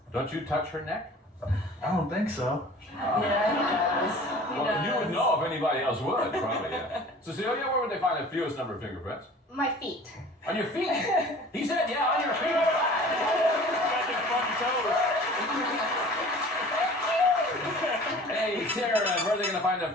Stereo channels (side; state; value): both; normal; correlation 0.45